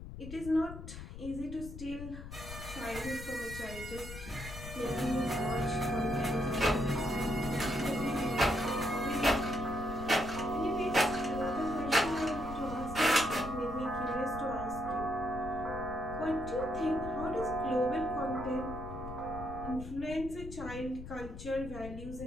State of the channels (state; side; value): noise; left; rumble, 10 dB below the sound